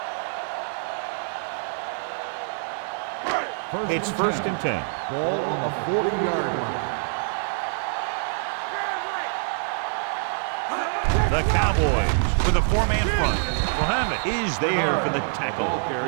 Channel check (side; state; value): left; silent; digital silence